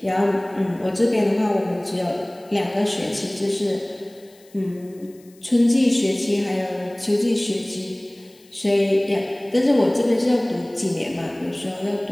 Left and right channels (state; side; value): noise; left; hiss, 29 dB below the sound